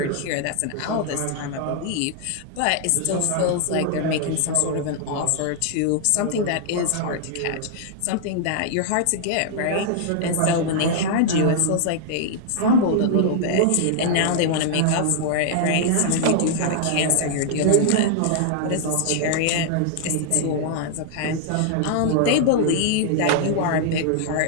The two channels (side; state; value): both; different; correlation -0.01